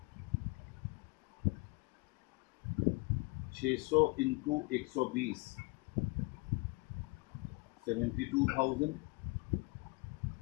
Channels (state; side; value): quieter; right; 26.8 dB